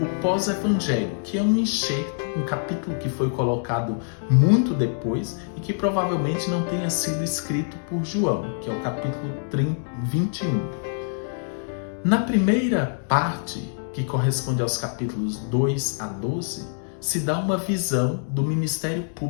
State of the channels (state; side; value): silent; right; digital silence